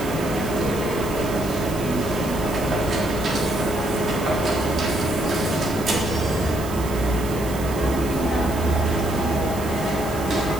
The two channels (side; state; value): right; noise; hiss, 14 dB below the sound